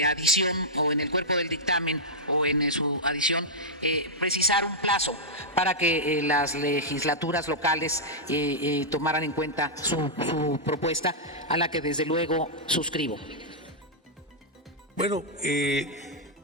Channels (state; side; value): normal; both; correlation -0.09